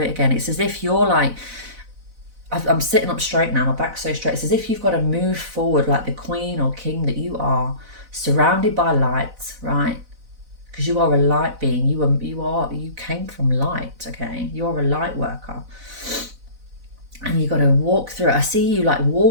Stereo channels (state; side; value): late; left; 4.0 ms